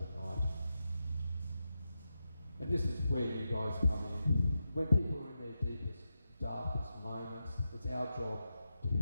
And this is where you guys come in. When people are in their deepest, darkest moments, it's our job to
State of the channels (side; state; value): both; inverted; correlation -0.89